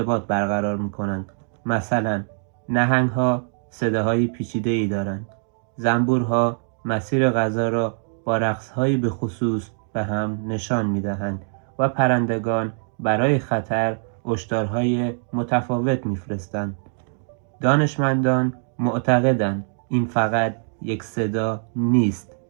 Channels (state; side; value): silent; left; digital silence